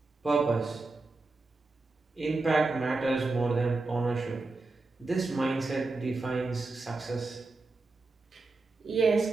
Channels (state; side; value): quieter; left; 3.5 dB